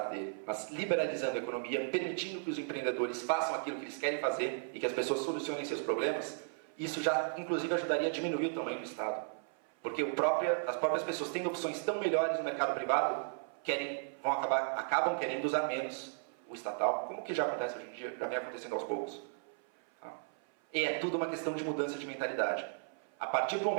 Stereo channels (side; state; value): left; silent; 54 dB below the other